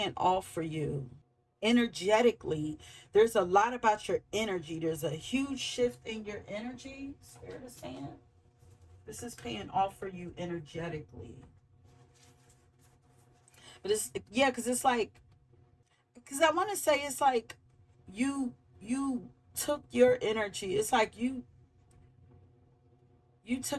off for you energetically. There's a lot about your energy. There's a huge shift in your energy. Spirit is saying this is paying off for you energetically. But it's, yeah, because it's like, because I want to say it's like you took your energy. It's like you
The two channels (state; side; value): identical; both; correlation 1.00